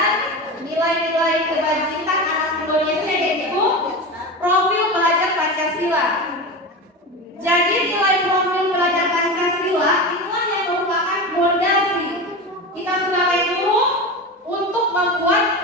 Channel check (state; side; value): normal; both; correlation 0.25